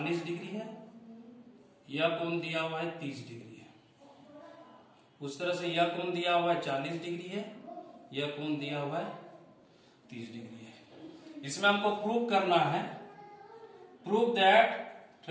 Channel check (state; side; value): identical; both; correlation 1.00